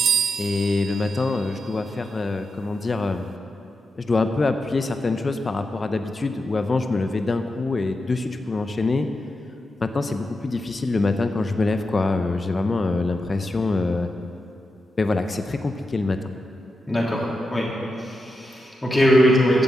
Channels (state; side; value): normal; both; correlation 0.87